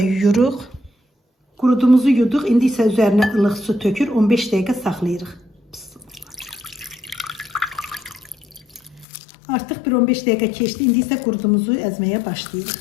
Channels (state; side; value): drops out; right; at 9.1 s